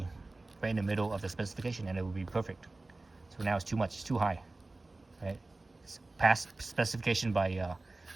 right in the middle of the specification, and it will be perfect. So now it's too much, it's too high, right? It's past specification by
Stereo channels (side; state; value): left; quieter; 3.1 dB